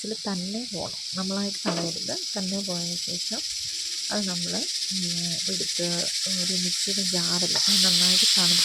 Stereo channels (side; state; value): both; identical; correlation 1.00